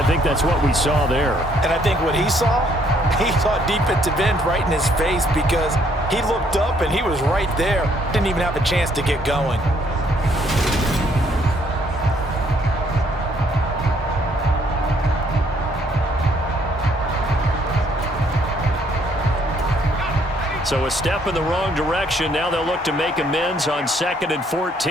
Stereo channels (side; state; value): both; normal; correlation 0.67